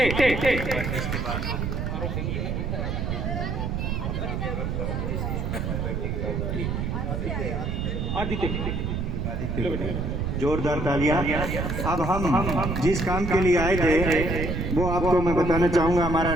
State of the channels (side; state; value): right; noise; rumble, 1 dB below the sound